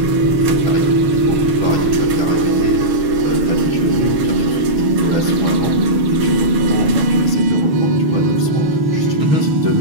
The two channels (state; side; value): late; left; 6.5 ms